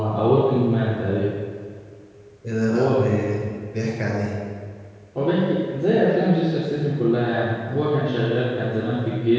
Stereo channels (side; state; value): both; identical; correlation 1.00